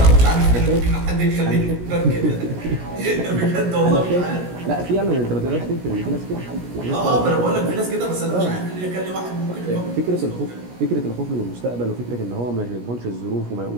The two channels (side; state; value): left; late; 17 ms